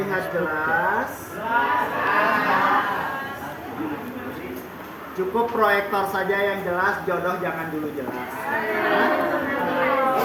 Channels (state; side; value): identical; both; correlation 1.00